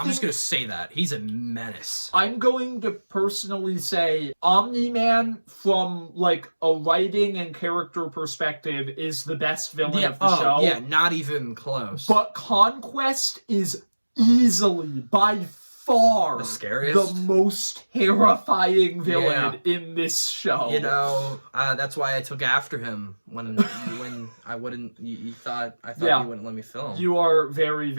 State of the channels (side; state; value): both; inverted; correlation -1.00